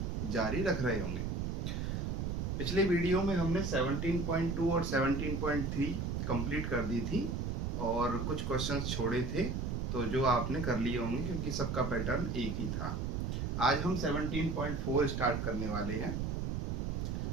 जारी रख रहे होंगे। पिछले वीडियो में हमने 17.2 और 17.3 कंप्लीट कर दी थी और कुछ क्वेश्चंस छोड़े थे, तो जो आपने कर लिए होंगे क्योंकि सबका पैटर्न एक ही था। आज हम 17.4 स्टार्ट करने वाले हैं।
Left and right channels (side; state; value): right; noise; rumble, 1 dB below the sound